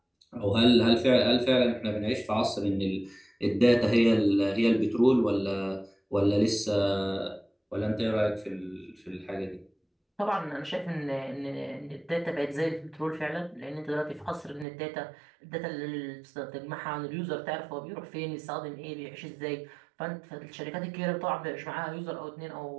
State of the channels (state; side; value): drops out; left; at 14.7 s